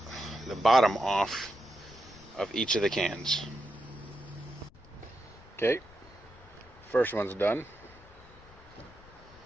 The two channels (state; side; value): noise; left; rumble, 22 dB below the sound